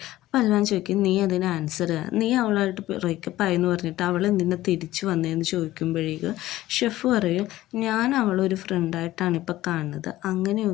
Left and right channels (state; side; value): quieter; right; 15.7 dB